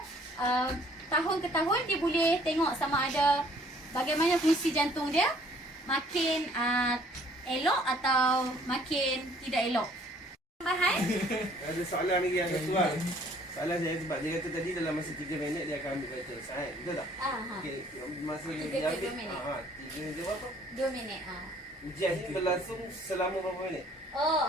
tahun ke tahun dia boleh tengok sama ada bagaimana fungsi jantung dia makin elok atau makin tidak elok. Tambahan? Ada soalan lagi yang ketua. Soalan saya sebab dia kata tadi dalam masa 3 minit dia akan ambil vital sign. Betul tak? Okey, masa dia ambil 3 minit berapa? 2 minit. Ujian ni berlangsung selama berapa minit?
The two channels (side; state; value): both; normal; correlation 0.59